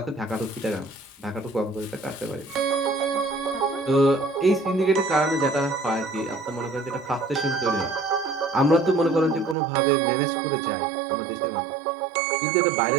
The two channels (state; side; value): drops out; left; at 9.6 s